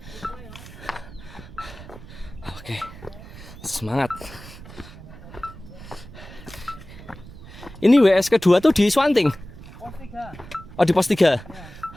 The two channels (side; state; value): right; noise; rumble, 16 dB below the sound